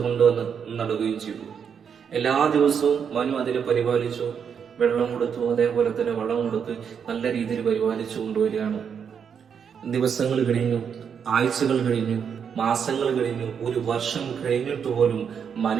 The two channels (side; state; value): left; quieter; 7.2 dB